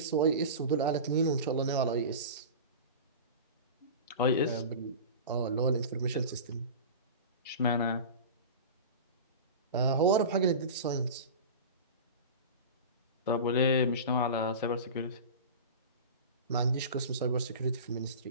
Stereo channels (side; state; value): both; inverted; correlation -0.31